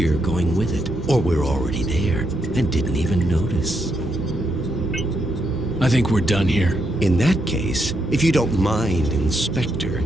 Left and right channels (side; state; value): left; noise; rumble, 16 dB below the sound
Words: going with it. Or we're already there, and didn't even notice. I think we're done here. In that case, if you don't mind, Inspector,